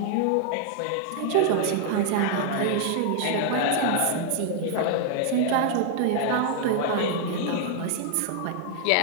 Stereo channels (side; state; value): both; different; correlation 0.00